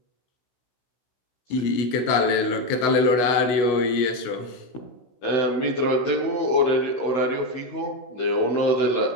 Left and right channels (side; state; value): right; late; 16 ms